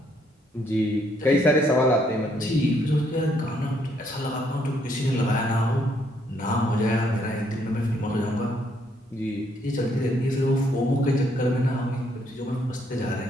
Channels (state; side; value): normal; both; correlation 0.71